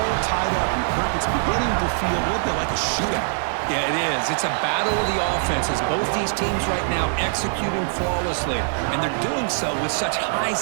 tied up, and Kirk, it's beginning to feel a little bit like a shootout. Yeah, it is. It's a battle of the offenses. Both these teams right now executing flawlessly, and they're doing so with such high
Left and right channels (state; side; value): silent; left; digital silence